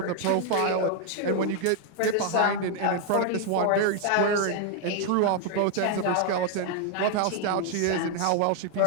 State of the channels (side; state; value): both; different; correlation 0.00